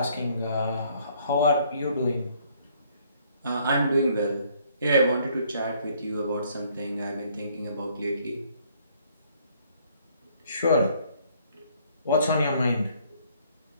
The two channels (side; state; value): both; inverted; correlation -0.64